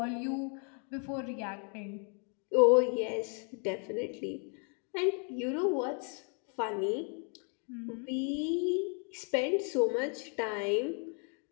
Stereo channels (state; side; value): quieter; right; 39.9 dB